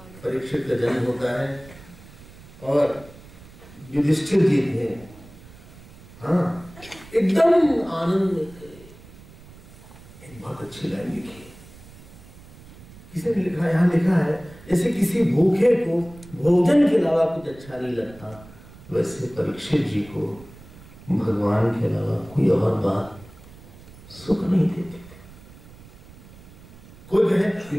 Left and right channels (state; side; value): noise; right; rumble, 20 dB below the sound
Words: परीक्षित का जन्म होता है और युधिष्ठिर जी थे, हाँ, एकदम आनंद में थे। एक बहुत अच्छी लाइन लिखी है, किसी ने लिखा, यहाँ लिखा है, जैसे किसी भूखे को भोजन के अलावा कुछ अच्छा नहीं लगता, वैसे परीक्षित जी को भगवान के अलावा कोई और बात सुख नहीं देती थी। कोई कहे